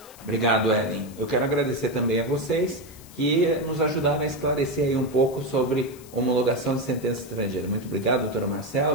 Obrigado, Ellen. Eu quero agradecer também a vocês que nos ajudaram a esclarecer aí um pouco sobre homologação de sentença estrangeira. Muito obrigado, doutora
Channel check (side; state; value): left; noise; hiss, 21 dB below the sound